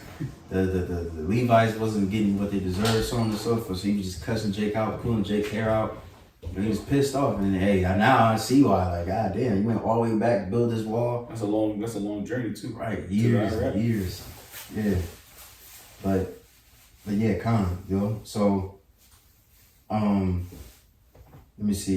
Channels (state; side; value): identical; both; correlation 1.00